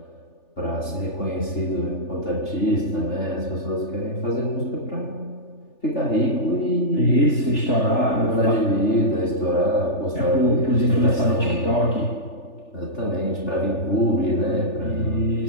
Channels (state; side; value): late; right; 3.4 ms